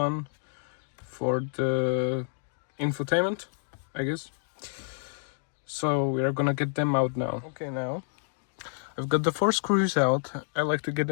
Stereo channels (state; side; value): silent; right; 59 dB below the other